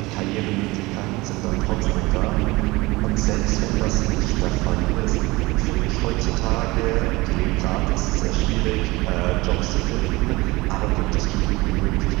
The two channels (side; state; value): left; quieter; 21.8 dB